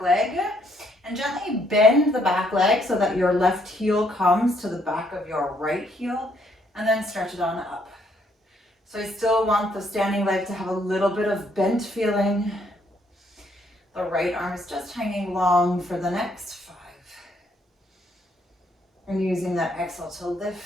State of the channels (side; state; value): both; normal; correlation 0.70